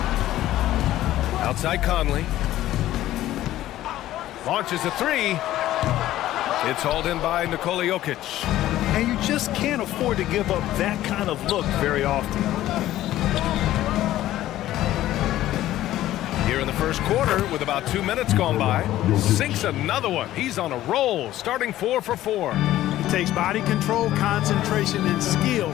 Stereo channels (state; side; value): quieter; right; 14.2 dB